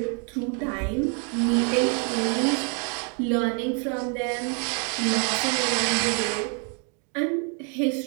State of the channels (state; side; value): quieter; left; 39.0 dB